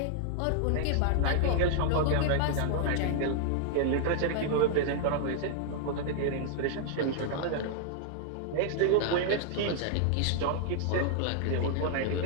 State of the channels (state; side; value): different; both; correlation -0.01